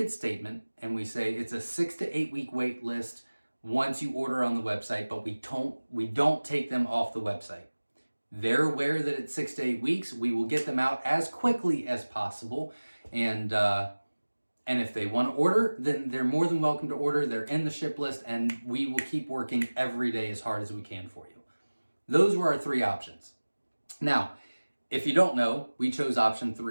statement and we say it's a 6 to 8 week wait list once you order on the website, but we don't take them off the website. They're aware that it's 6 to 8 weeks. We will get them out as quickly as possible. And if they want to order, then they're more than welcome to order. They're in the ship list, and we will keep working every day as hard as we can for you. Those were our 3 options. Now, if you don't know, we chose option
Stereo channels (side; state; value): both; inverted; correlation -1.00